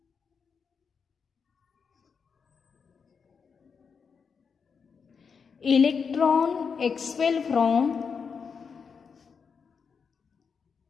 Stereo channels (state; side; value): quieter; right; 5.9 dB